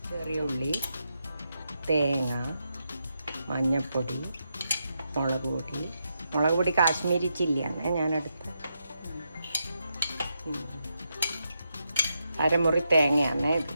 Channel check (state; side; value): inverted; both; correlation -0.84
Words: ചെറിയ ഉള്ളി, തേങ്ങ, മഞ്ഞൾപ്പൊടി, മുളക് പൊടി കാശ്മീരി ചില്ലിയാണ് ഞാനെടുത്ത്. 1/2 മുറി തേങ്ങയാണ് ഇത്.